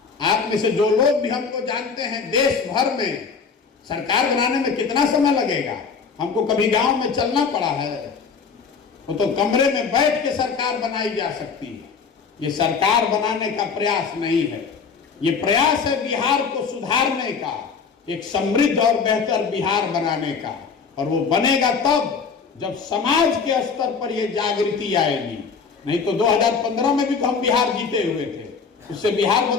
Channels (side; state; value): right; quieter; 5.6 dB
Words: आप में से जो लोग भी हमको जानते हैं, देश भर में सरकार बनाने में कितना समय लगेगा? हमको कभी गांव में चलना पड़ा है? वो तो कमरे में बैठ के सरकार बनाई जा सकती है। ये सरकार बनाने का प्रयास नहीं है, ये प्रयास है बिहार को सुधारने का, एक समृद्ध और बेहतर बिहार बनाने का। और वो बनेगा तब जब समाज के स्तर पर ये जागृति आएगी। नहीं तो 2015 में भी तो हम बिहार जीते हुए थे, उससे बिहार